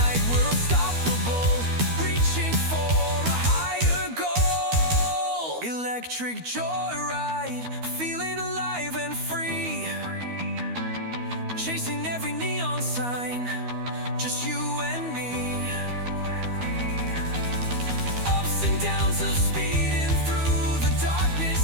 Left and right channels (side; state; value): left; late; 13 ms